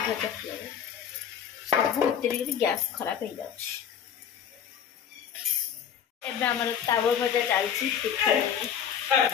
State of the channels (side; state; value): right; quieter; 8.5 dB